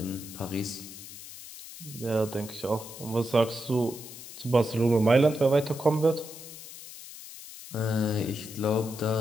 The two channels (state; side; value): noise; left; hiss, 14 dB below the sound